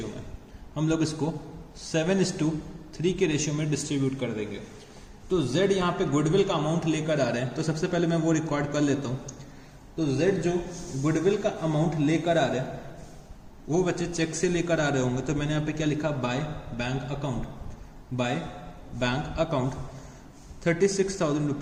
में। हम लोग इसको 7:3 के रेशियो में डिस्ट्रीब्यूट कर देंगे। तो Z यहाँ पे गुडविल का अमाउंट लेकर आ रहे हैं। तो सबसे पहले मैं वो रिकॉर्ड कर लेता हूँ। तो Z जो गुडविल का अमाउंट लेकर आ रहे हैं वो बच्चे चेक से लेकर आ रहे होंगे। तो मैंने यहाँ पे क्या लिखा? By bank account. By bank account 36,000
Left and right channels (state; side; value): identical; both; correlation 1.00